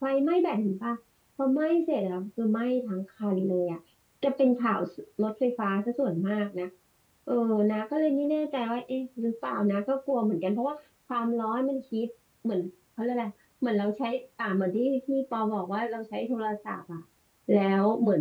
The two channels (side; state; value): both; identical; correlation 1.00